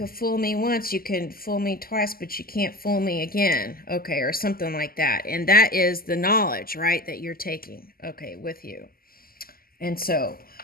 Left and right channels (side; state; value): right; late; 0.42 ms